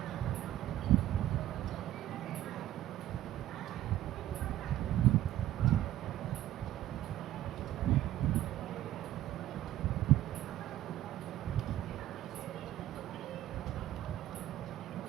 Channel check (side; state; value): left; quieter; 13.4 dB